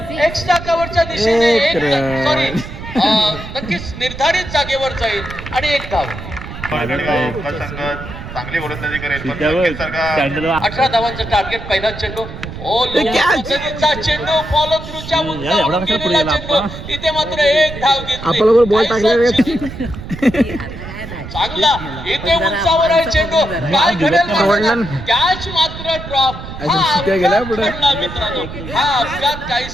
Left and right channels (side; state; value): right; noise; rumble, 11 dB below the sound